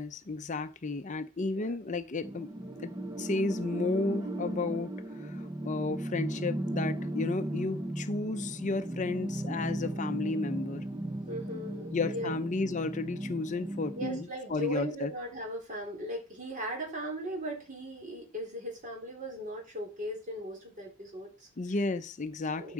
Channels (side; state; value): both; normal; correlation 0.54